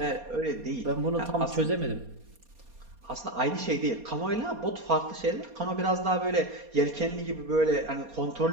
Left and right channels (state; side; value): late; left; 4.2 ms